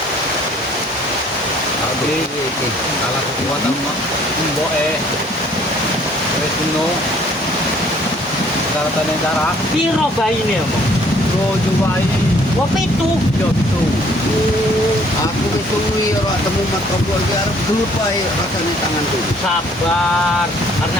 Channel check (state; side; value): normal; both; correlation 0.60